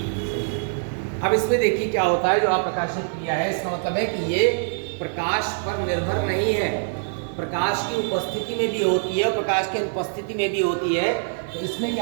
अब इसमें देखिए क्या होता है, जो अप्रकाशित क्रिया है इसका मतलब है कि ये प्रकाश पर निर्भर नहीं है, प्रकाश की उपस्थिति में भी होती है, प्रकाश की अनुपस्थिति में भी होती है। तो इसमें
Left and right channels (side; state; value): left; silent; digital silence